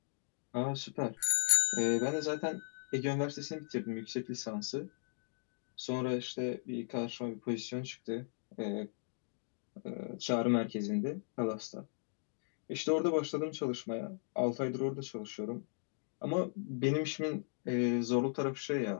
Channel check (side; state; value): right; silent; digital silence